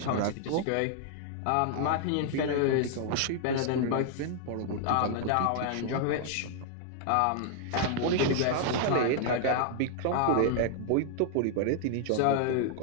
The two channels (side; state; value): both; different; correlation 0.00